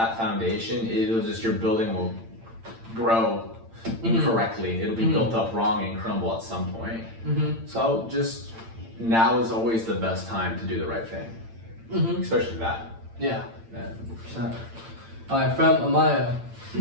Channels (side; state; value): left; late; 8.9 ms